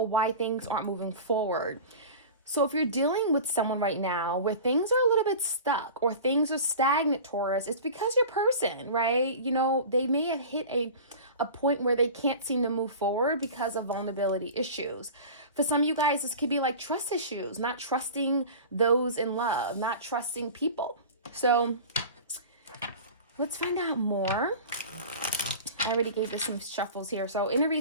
why things aren't moving forward. So if you're dealing with someone right now where things are a little bit stuck or things are stagnant, Taurus, it's because your person, right? You know, they may have hit a point where they can't seem to move forward because of vulnerability issues. For some of you guys, this could be like trust issues, not trusting those in love, not trusting people. So let's find out more. I already gave this some shuffles here. So in a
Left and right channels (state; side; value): inverted; both; correlation -0.36